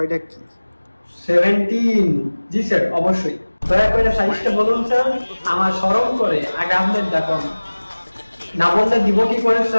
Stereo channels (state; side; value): inverted; both; correlation -1.00